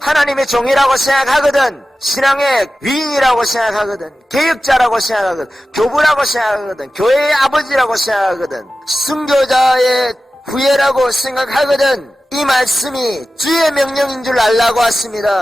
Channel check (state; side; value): normal; both; correlation 0.95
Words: 종이라고 생각하거든, 신앙의 위인이라고 생각하거든, 개혁자라고 생각하거든, 교부라고 생각하거든, 교회의 아버지라고 생각하거든, 순교자의 후예라고 생각하거든. 이 말씀이 주의 명령인 줄 알라고